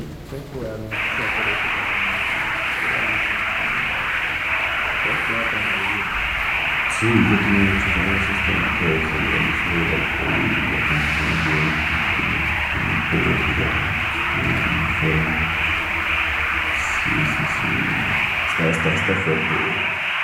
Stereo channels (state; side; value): identical; both; correlation 1.00